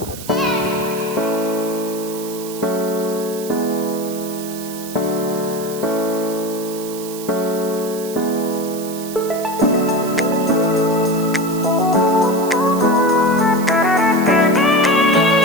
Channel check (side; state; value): right; noise; hiss, 13 dB below the sound